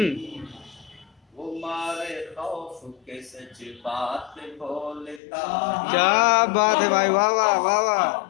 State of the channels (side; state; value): right; drops out; at 5.2 s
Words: वो मारे खौफ के सच बात बोलता ही क्या बात है भाई, वाह वाह वाह वाह,